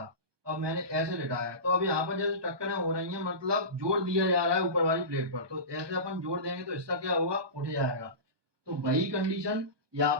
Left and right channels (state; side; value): late; left; 1.2 ms